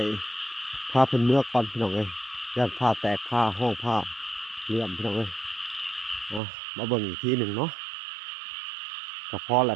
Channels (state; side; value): drops out; left; at 6.4 s